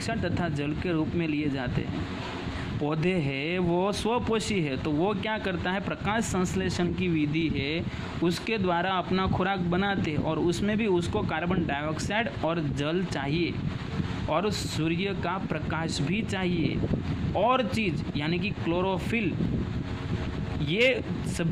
तथा जल के रूप में लिए जाते हैं। पौधे है वो स्वपोषी है, तो वो क्या करता है? प्रकाश संश्लेषण की विधि है, उसके द्वारा अपना खुराक बनाते हैं और उसमें भी उसको कार्बन डाइऑक्साइड और जल चाहिए और सूर्य का प्रकाश भी चाहिए और चीज़ यानी कि क्लोरोफिल। ये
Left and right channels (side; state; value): both; identical; correlation 1.00